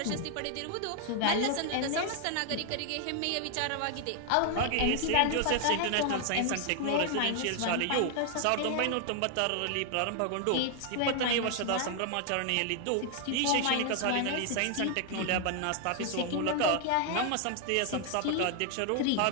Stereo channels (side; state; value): both; different; correlation 0.00